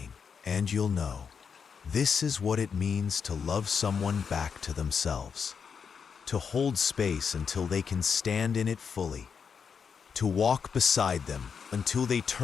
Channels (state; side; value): quieter; right; 6.4 dB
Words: And you'll know, this is what it means to love someone back to themselves. To hold space until they can stand in it fully. To walk beside them until they